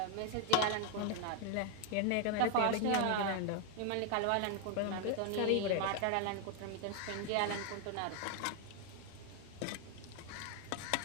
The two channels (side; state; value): both; different; correlation 0.00